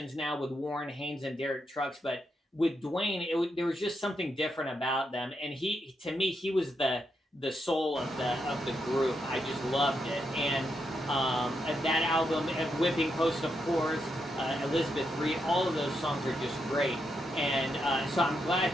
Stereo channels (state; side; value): normal; both; correlation 0.82